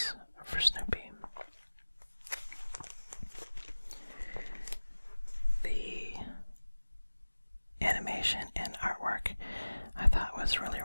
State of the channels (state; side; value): inverted; both; correlation -1.00